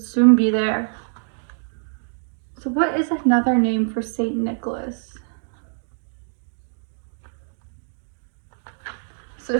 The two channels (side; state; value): left; silent; 60 dB below the other